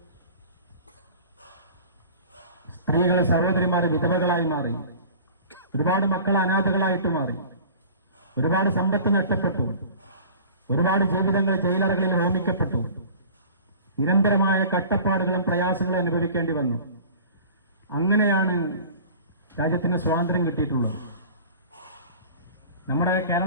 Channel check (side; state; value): both; inverted; correlation -0.42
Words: സ്ത്രീകളെ, സഹോദരിമാരെ വിധവകളായി മാറി. ഒരുപാട് മക്കൾ അനാഥകളായിട്ട് മാറി. ഒരുപാട് സമ്പത്ത് നഷ്ടപ്പെട്ടു. ഒരുപാട് ജീവിതങ്ങൾ ജയിലറകളിൽ ഹോമിക്കപ്പെട്ടു. നിരന്തരമായ കട്ടപ്പാടുകളും പ്രയാസങ്ങളും അനുഭവിക്കേണ്ടി വന്നു. അങ്ങനെയാണ് രാജ്യത്തിന് സ്വാതന്ത്ര്യം കിട്ടിയിട്ടുള്ളത്. നമ്മുടെ